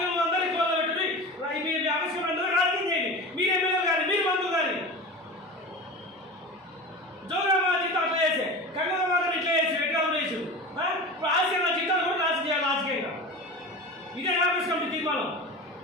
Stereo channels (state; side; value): normal; both; correlation 0.31